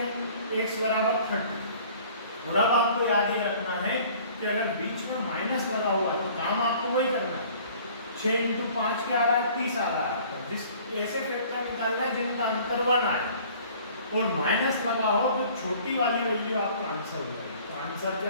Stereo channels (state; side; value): inverted; both; correlation -0.51